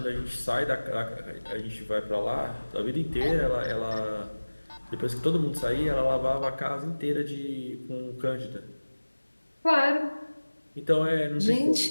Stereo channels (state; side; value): inverted; both; correlation -1.00